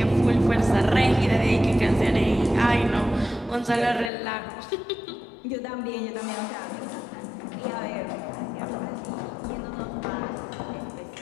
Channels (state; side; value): drops out; right; at 4.1 s